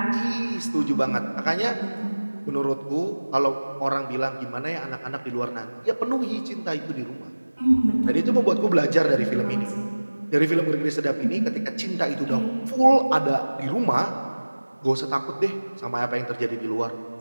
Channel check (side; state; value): both; inverted; correlation -1.00